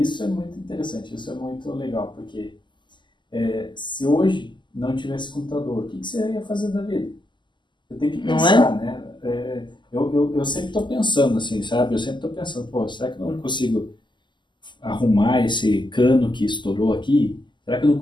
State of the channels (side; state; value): right; late; 0.22 ms